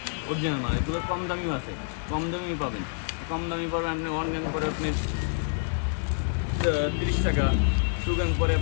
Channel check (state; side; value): silent; right; 60 dB below the other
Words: অরিজিনাল মাল, এগুলো কম দামিও আছে, কম দামি পাবেন। কম দামি পাবেন আপনি ওয়ান গ্যাং পরে আপনি 30 টাকা, টু গ্যাং পরে